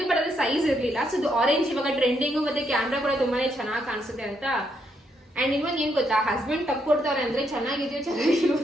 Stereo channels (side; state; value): both; normal; correlation 0.76